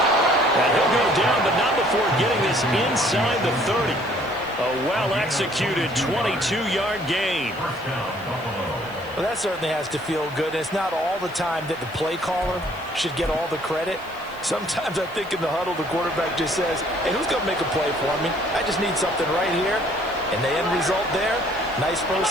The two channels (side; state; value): left; noise; hiss, 25 dB below the sound